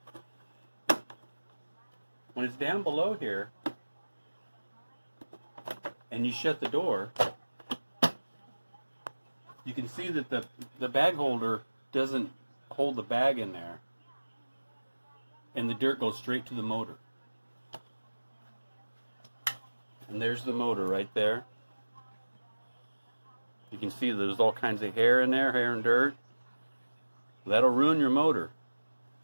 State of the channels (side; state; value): both; inverted; correlation -1.00